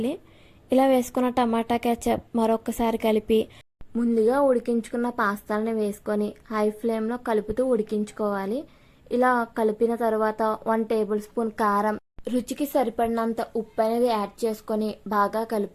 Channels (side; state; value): both; identical; correlation 1.00